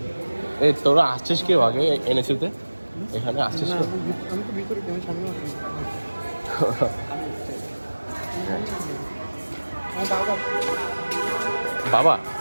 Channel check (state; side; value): inverted; both; correlation -1.00